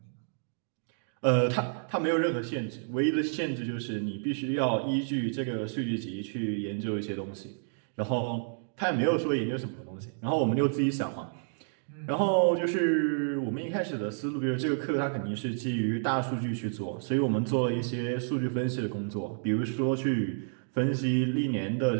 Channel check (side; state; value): left; silent; digital silence